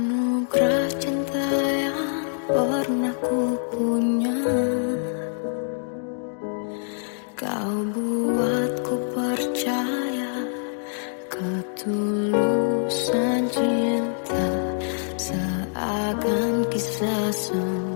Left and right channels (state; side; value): silent; right; digital silence